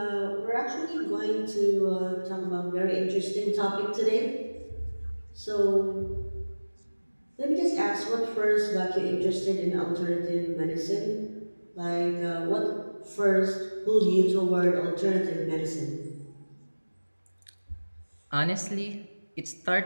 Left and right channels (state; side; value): inverted; both; correlation -1.00